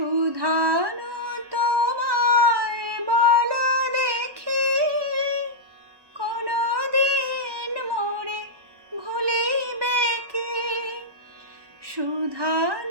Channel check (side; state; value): left; late; 1.1 ms